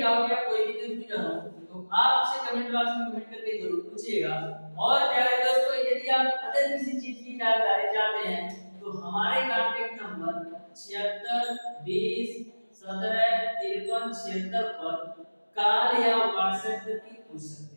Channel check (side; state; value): both; inverted; correlation -1.00